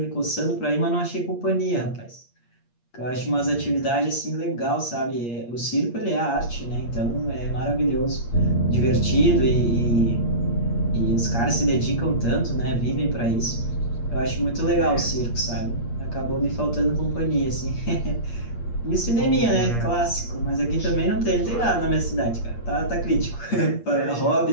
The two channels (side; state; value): right; late; 8.6 ms